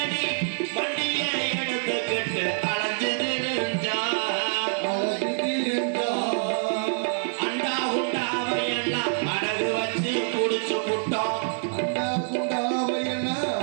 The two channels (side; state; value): left; silent; digital silence